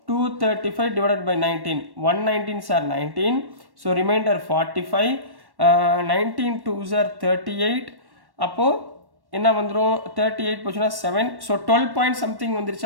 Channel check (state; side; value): late; left; 1.1 ms